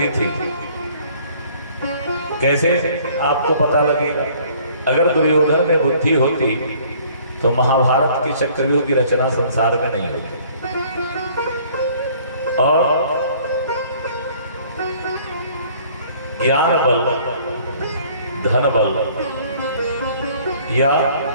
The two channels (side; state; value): both; inverted; correlation -0.56